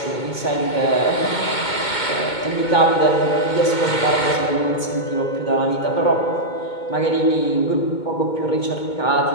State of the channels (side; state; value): right; late; 2.2 ms